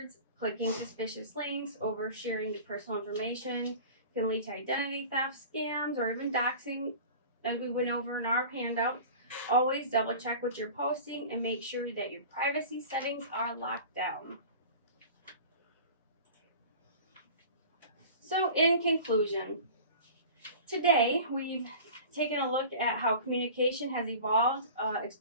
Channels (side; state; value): both; inverted; correlation -0.39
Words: clicking suspicious links, oversharing the personal information can lead to identity theft, scams, or even doxing, as we went over in our handouts. Always double check what you're posting and make sure that your privacy settings are locked down. So in conclusion, today we've taken a look at how communication has evolved,